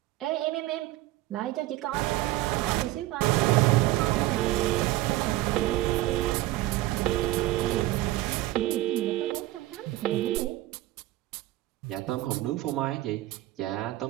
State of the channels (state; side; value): quieter; left; 16.6 dB